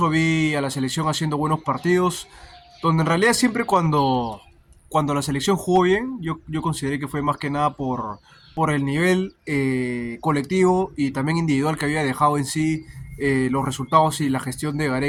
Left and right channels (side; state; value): both; identical; correlation 1.00